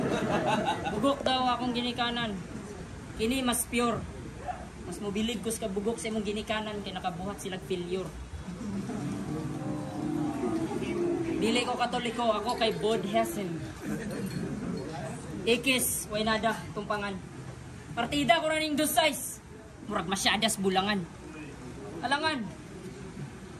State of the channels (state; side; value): identical; both; correlation 1.00